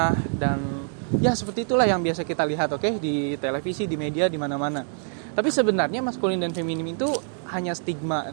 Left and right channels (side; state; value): left; silent; 62 dB below the other